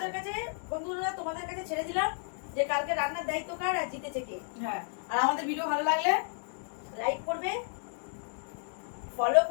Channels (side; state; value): right; silent; 56 dB below the other